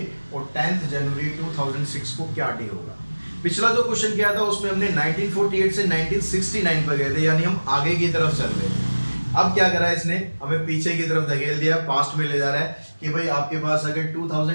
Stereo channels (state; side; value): inverted; both; correlation -1.00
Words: और 10 जनवरी 2006 को क्या डे होगा? पिछला जो क्वेश्चन किया था उसमें हमने 1948 से 1969 पर गए थे, यानी हम आगे की तरफ चल रहे हैं। अब क्या करा है इसने? हमें पीछे की तरफ धकेल दिया, पास्ट में ले जा रहा है कि भाई आपके पास अगर